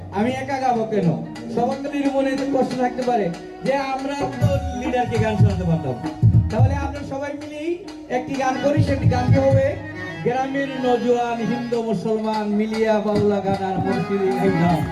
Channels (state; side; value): identical; both; correlation 1.00